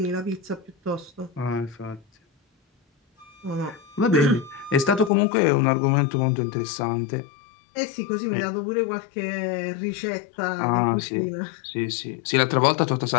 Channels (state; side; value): drops out; right; at 5.1 s